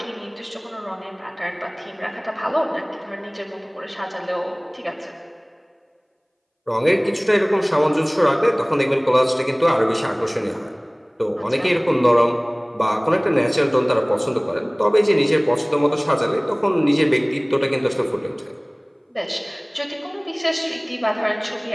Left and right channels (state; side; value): identical; both; correlation 1.00